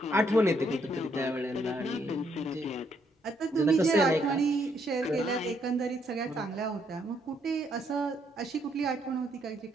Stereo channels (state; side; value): normal; both; correlation 0.72